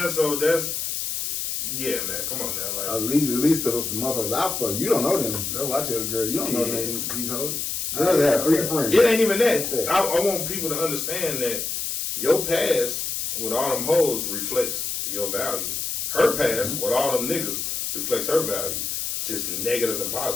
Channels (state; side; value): noise; left; hiss, 3 dB below the sound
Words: So that's, yeah, man. Come on now. Like, at least the motherfuckers I fuck, you don't know them. That's why I tell the girl, you don't know them, these hoes. Girls have 3 friends. It ain't even that. I want people to understand that your past with all them hoes reflects your value. Her past with all them niggas reflects her value, just negative and